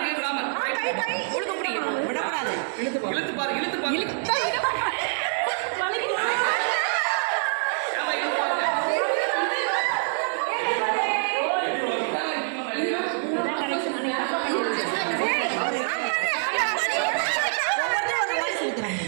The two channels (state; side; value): silent; left; digital silence